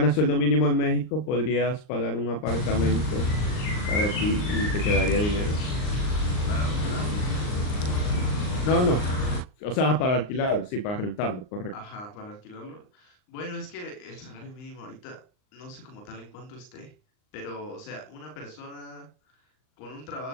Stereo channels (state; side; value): late; right; 39 ms